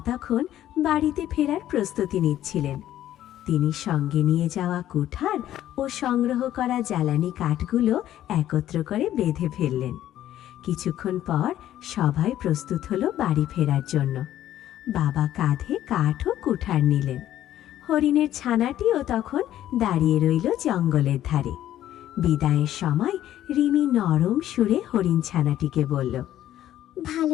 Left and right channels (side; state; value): right; quieter; 12.4 dB